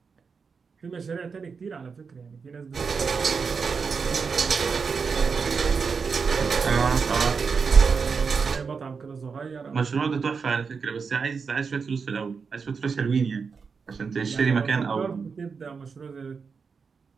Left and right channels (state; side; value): quieter; left; 5.4 dB